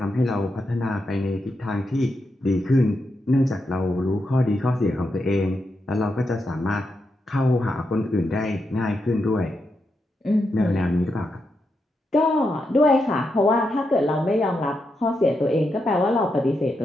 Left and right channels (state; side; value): normal; both; correlation 0.84